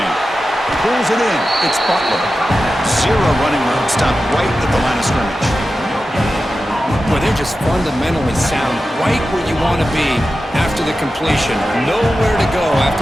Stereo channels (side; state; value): both; normal; correlation 0.93